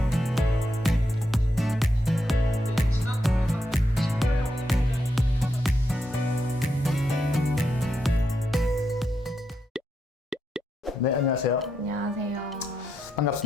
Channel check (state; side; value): normal; both; correlation 0.82